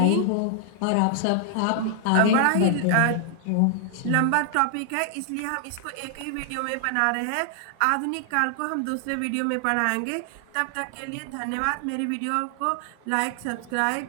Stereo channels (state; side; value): different; both; correlation 0.00